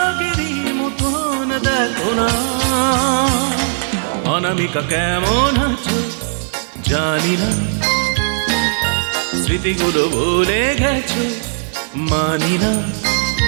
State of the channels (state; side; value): silent; left; digital silence